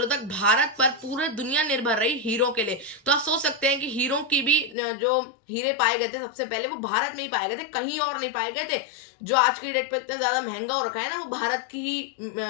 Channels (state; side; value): drops out; right; at 4.8 s